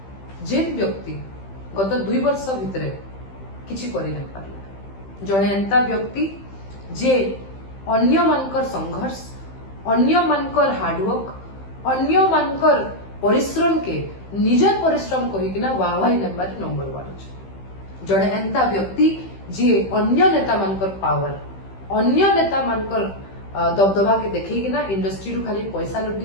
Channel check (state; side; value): late; right; 15 ms